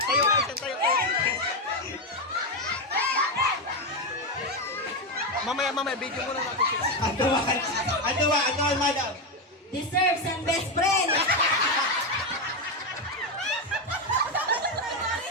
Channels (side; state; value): both; normal; correlation 0.09